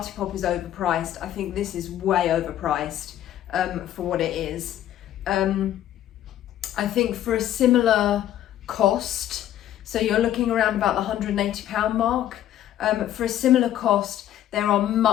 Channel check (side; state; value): right; quieter; 12.0 dB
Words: is overpriced, I think this is way overpriced for what it is. I think for a similar cost, so you're looking around about the £180 mark, for a similar cost, there are